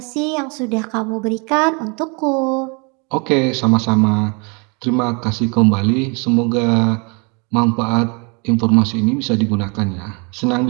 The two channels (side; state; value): left; quieter; 32.5 dB